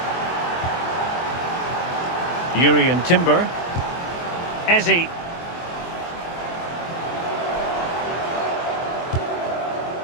Urian Timber. Eze.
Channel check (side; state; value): right; late; 24 ms